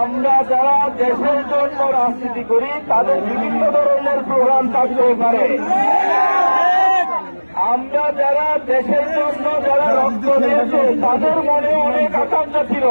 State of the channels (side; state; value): both; inverted; correlation -1.00